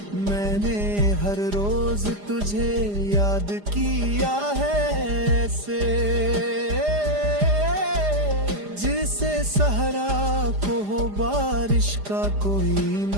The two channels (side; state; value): left; late; 4.9 ms